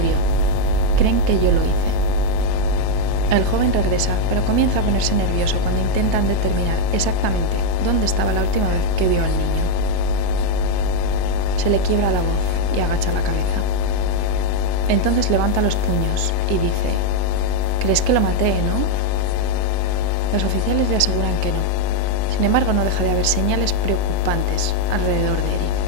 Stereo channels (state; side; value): different; both; correlation 0.00